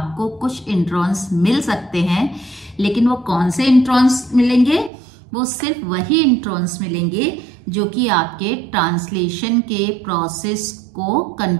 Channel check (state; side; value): drops out; left; at 4.9 s